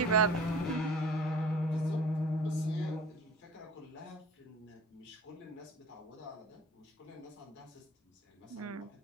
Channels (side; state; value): both; normal; correlation 0.44